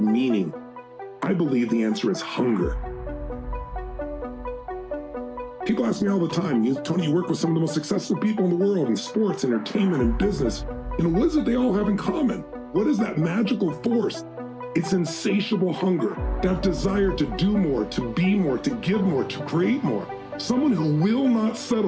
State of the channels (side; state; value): both; identical; correlation 1.00